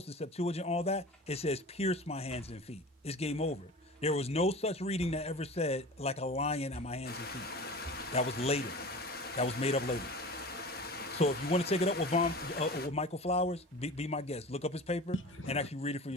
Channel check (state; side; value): normal; both; correlation 0.36